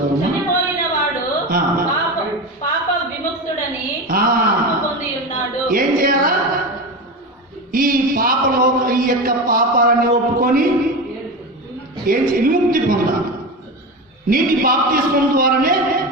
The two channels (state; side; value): normal; both; correlation 0.23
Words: చనిపోయిన వాడు పాప విముక్తుడని పొంది ఉన్నాడు. ఏం చేయాలా? ఈ యొక్క పాపాలని ఒప్పుకొని విముక్తి పొందాలి. నీటి బాప్తిస్మం ద్వారానే